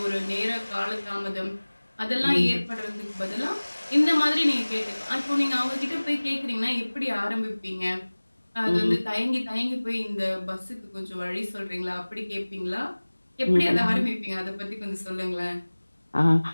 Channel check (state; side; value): inverted; both; correlation -1.00